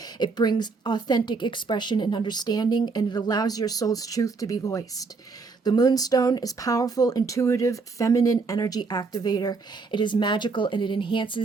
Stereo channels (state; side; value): quieter; left; 4.4 dB